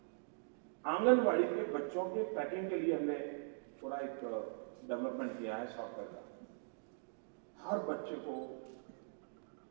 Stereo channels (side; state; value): left; silent; digital silence